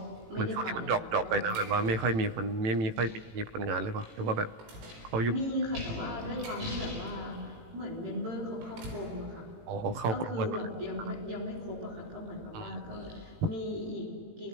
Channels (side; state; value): left; late; 18 ms